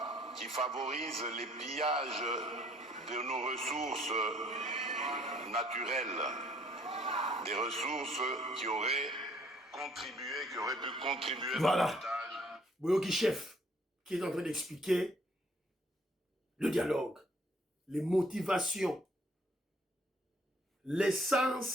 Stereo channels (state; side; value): normal; both; correlation 0.62